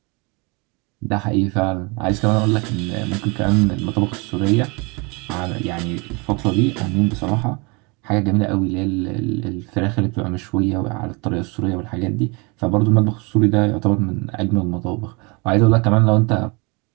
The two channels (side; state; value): left; quieter; 29.5 dB